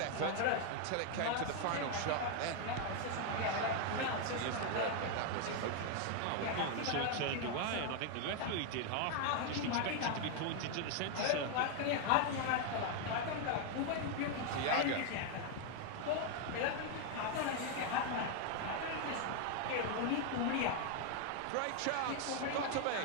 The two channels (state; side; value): different; both; correlation 0.01